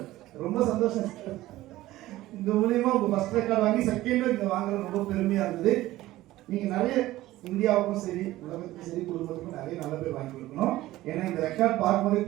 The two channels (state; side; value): quieter; left; 16.4 dB